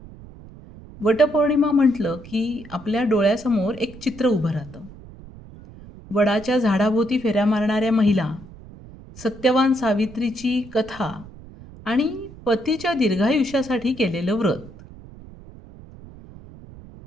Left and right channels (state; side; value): noise; right; rumble, 18 dB below the sound